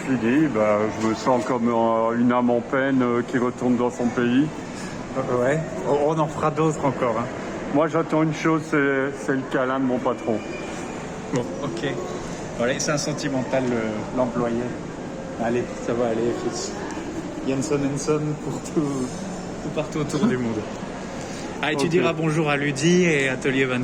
je me sens comme une âme en peine qui retourne dans son pays. Ouais. On en fera d'autres encore. Hein. Moi j'attends une chose, c'est le câlin de mon patron. Bon, ok. Voilà, c'est un sentimental, l'employé. Allez, ça va aller, fils. Jenson Henson pour tout partout autour du monde. Ah, et tu diras bonjour à Ludi et Atelier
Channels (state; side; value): identical; both; correlation 1.00